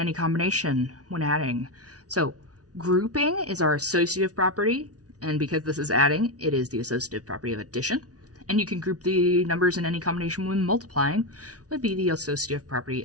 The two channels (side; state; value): left; late; 0.68 ms